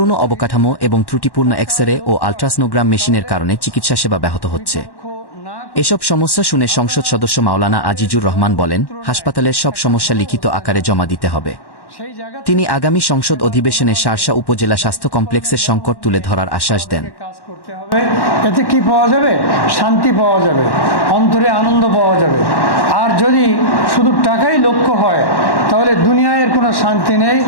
অবকাঠামো এবং ত্রুটিপূর্ণ এক্স-রে ও আল্ট্রাসনোগ্রাম মেশিনের কারণে চিকিৎসা সেবা ব্যাহত হচ্ছে। এসব সমস্যা শুনে সংসদ সদস্য মাওলানা আজিজুর রহমান বলেন, হাসপাতালের সব সমস্যা লিখিত আকারে জমা দিতে হবে। তিনি আগামী সংসদ অধিবেশনে শার্শা উপজেলা স্বাস্থ্য কমপ্লেক্সের সংকট তুলে ধরার আশ্বাস দেন। এতে কি পাওয়া যাবে? শান্তি পাওয়া যাবে, অন্তরে আনন্দ পাওয়া যাবে। আর যদি শুধু টাকাই লক্ষ্য হয় তাহলে দুনিয়ায় কোনো শান্তি নেই।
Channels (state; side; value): late; right; 1.1 ms